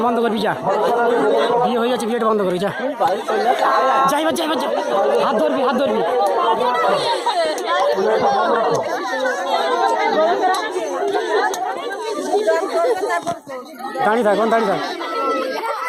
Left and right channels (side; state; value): both; identical; correlation 1.00